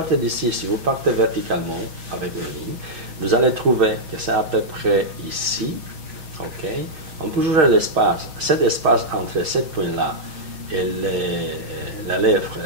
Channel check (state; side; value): late; left; 6.5 ms